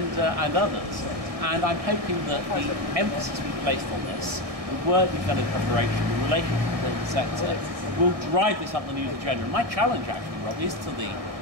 others. And I'm hoping that the emphasis we placed on this, the work we've done in preparation, the relationship with the sector, will drive this up the news agenda. And my challenge, actually, Rob, is to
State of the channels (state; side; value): late; left; 1.6 ms